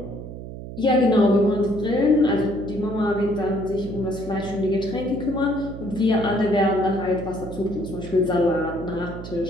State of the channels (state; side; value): noise; right; hum, 11 dB below the sound